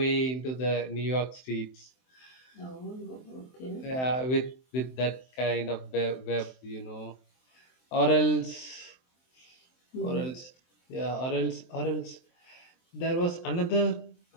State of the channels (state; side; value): late; right; 23 ms